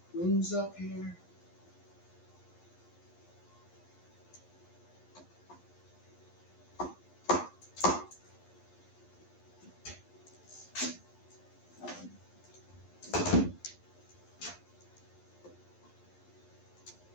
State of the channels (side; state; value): right; late; 11 ms